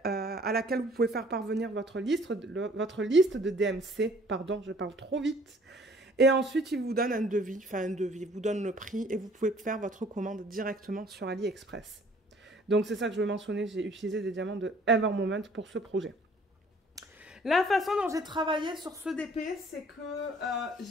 à laquelle vous pouvez faire parvenir votre liste de DMC. Pardon, je parle trop vite. Et ensuite, ils vous donnent un devis, ils vous donnent le prix et vous pouvez faire votre commande directement sur AliExpress. Donc, c'est ça que je veux mentionner, j'ai utilisé des diamants de Evermoment pour ce projet. La façon dont j'ai travaillé sur ce DP, c'est que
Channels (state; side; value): normal; both; correlation 0.56